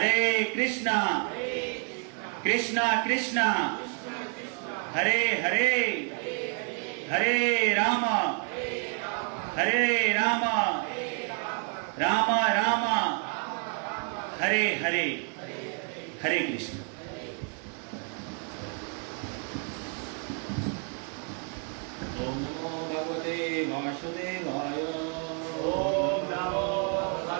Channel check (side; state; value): left; quieter; 38.6 dB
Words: कृष्णा कृष्णा कृष्णा हरे हरे हरे राम राम राम हरे हरे। हरे कृष्ण। ओम नमो भगवते वासुदेवाय। ओम नमो